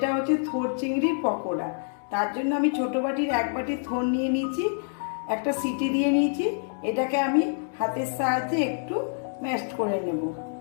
হচ্ছে থোড় চিংড়ির পকোড়া। তার জন্য আমি ছোটো বাটির 1 বাটি থোড় নিয়ে নিয়েছি, একটা সিটি দিয়ে নিয়েছি। এটাকে আমি হাতের সাহায্যে একটু ম্যাশড করে নেব।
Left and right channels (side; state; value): right; silent; digital silence